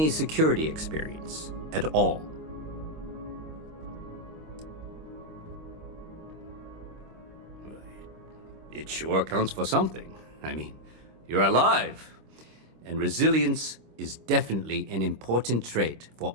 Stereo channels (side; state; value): left; late; 26 ms